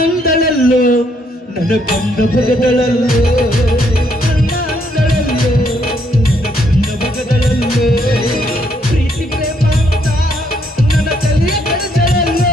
ನನ್ನ ಬಂದ ಭಗದಳಲ್ಲೋ ಪ್ರೀತಿ ಪ್ರೇಮ ಅಂತ ನನ್ನ ತಲೆಯ ಕಳೆದಳಲ್ಲೋ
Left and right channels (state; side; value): normal; both; correlation 0.71